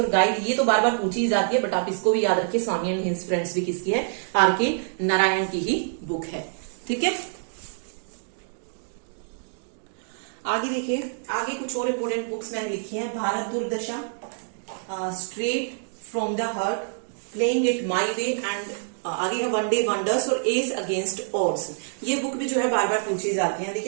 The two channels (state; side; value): silent; left; digital silence